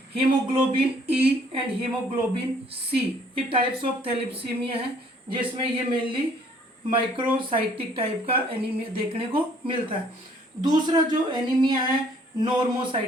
haemoglobin E and haemoglobin C, ये टाइप्स ऑफ थैलीसीमिया है, जिसमें ये मेनली माइक्रोसाइटिक टाइप का एनीमिया देखने को मिलता है। दूसरा जो एनीमिया है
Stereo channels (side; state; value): both; normal; correlation 0.60